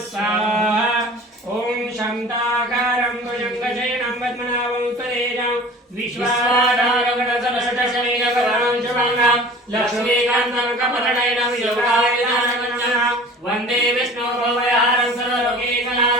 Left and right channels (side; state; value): both; normal; correlation 0.43